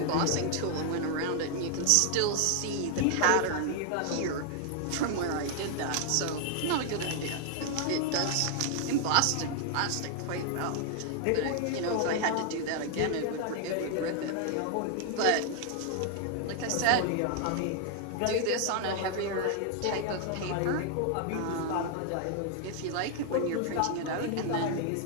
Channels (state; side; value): different; both; correlation 0.00